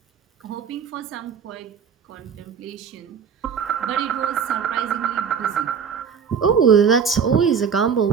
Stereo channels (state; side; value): quieter; left; 6.8 dB